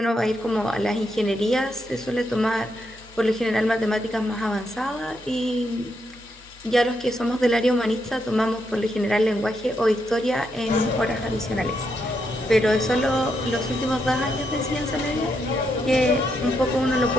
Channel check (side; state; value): both; normal; correlation 0.80